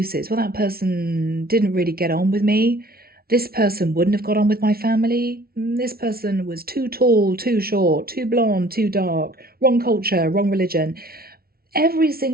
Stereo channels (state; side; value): late; left; 0.44 ms